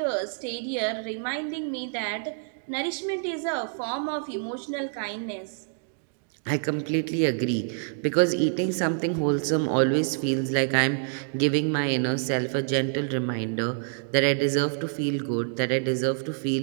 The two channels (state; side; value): silent; left; digital silence